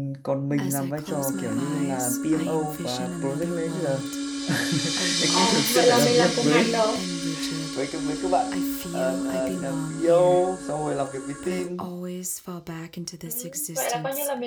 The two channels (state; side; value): identical; both; correlation 1.00